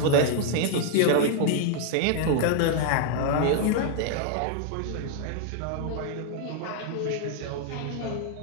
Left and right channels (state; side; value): different; both; correlation 0.00